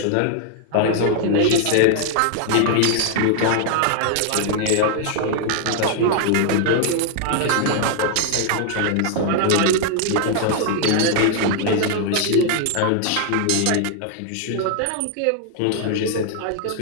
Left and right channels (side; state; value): both; different; correlation 0.00